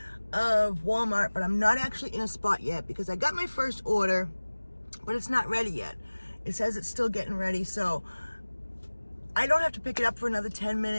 of Walmart, but I'm not actually in a spot yet because I got my first order, but it's not ready yet. It says it's still getting ready, so I don't have to pick it up for another 10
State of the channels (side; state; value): both; inverted; correlation -1.00